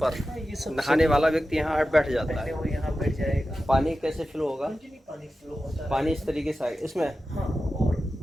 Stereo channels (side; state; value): both; normal; correlation 0.93